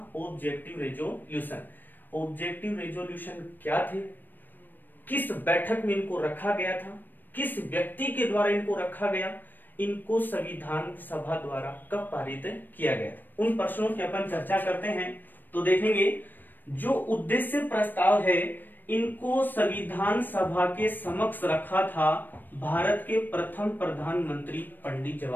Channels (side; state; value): right; late; 0.091 ms